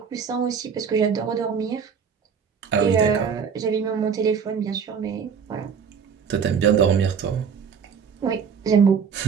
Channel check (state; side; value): quieter; left; 6.7 dB